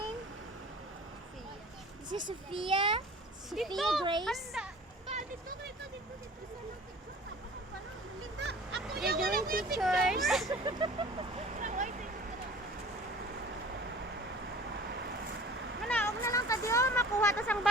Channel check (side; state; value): both; normal; correlation 0.45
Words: This is Sophia. Sophia Grace. They're doing pictures. Manaog na lang tadi oh, makuha tas ang